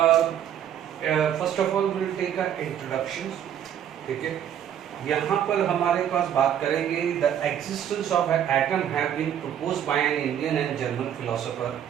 First of all we will take an introduction. ठीक है. यहाँ पर हमारे पास बात करेंगे the existence of an atom have been proposed by an Indian and German philosopher.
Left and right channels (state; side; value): quieter; left; 9.7 dB